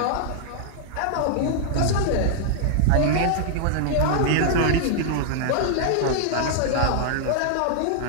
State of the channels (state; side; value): different; both; correlation -0.01